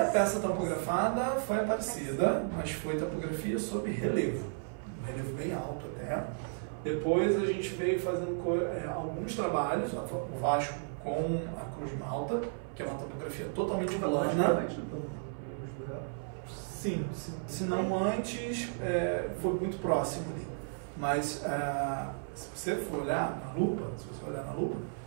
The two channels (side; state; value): left; silent; 55 dB below the other